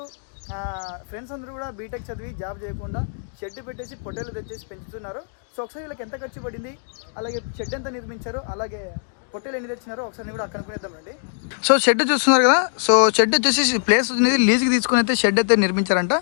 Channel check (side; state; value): right; silent; digital silence